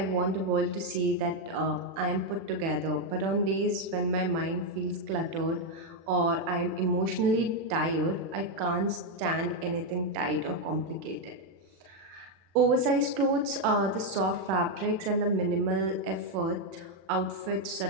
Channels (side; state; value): left; late; 36 ms